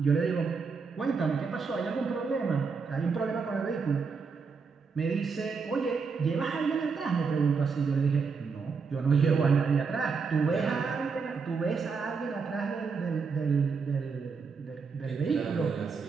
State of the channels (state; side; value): quieter; left; 5.2 dB